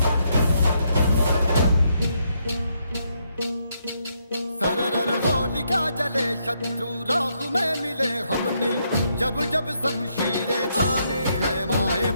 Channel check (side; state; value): both; inverted; correlation -0.76